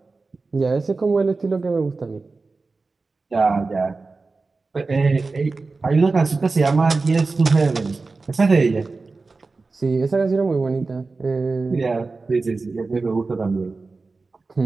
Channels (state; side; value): quieter; left; 3.9 dB